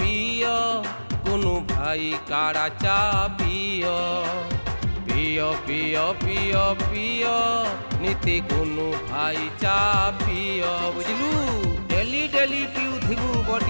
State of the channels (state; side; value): inverted; both; correlation -1.00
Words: कुनु भाई काड़ा चा पिय पिय पिय पिय पिय नीति कुनु भाई चा पिय बुझलु। डेली डेली पिउथिबु